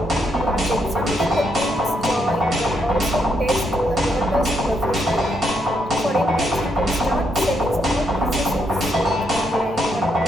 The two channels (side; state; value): both; normal; correlation 0.77